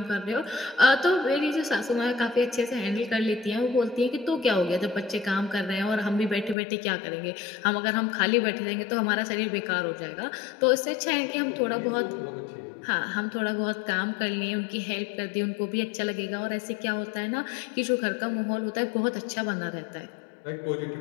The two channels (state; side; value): drops out; right; at 6.6 s